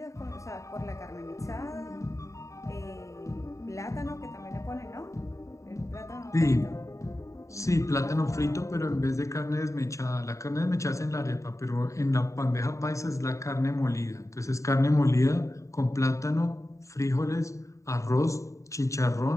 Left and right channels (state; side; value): late; right; 0.15 ms